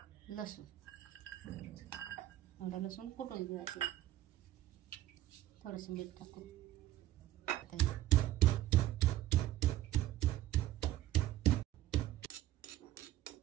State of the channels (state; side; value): quieter; left; 14.1 dB